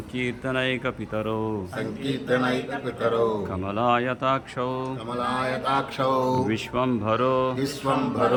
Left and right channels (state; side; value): identical; both; correlation 1.00